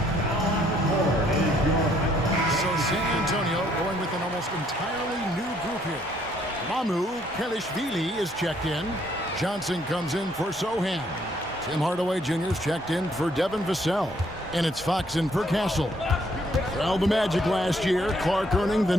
Entirely new group here. Mamu Kelishvili is checked in. Johnson comes in for Sohan. Tim Hardaway Jr. is checked in for Devin Vassell. And it's Fox in for Castle. Well, the Magic last year, Clark earning the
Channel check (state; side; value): normal; both; correlation 0.67